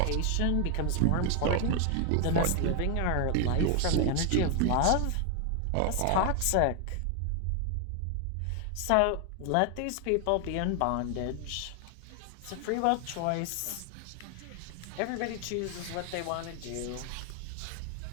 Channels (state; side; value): different; both; correlation 0.00